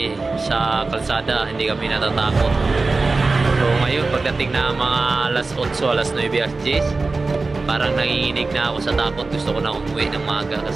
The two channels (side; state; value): left; quieter; 3.7 dB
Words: sa kalsada, hindi kami natatakot. So ngayon, pagdating na mga alas 8, alas 9, alas 10, parang nanginginig na ako sa takot. Gusto ko na umuwi ng maga